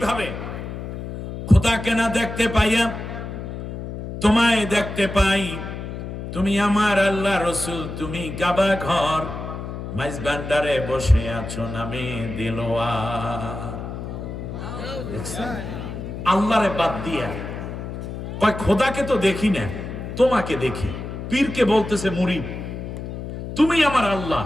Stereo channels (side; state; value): left; noise; hum, 8 dB below the sound